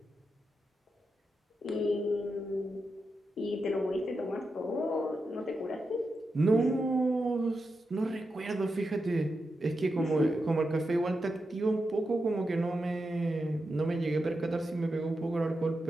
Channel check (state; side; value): normal; both; correlation 0.88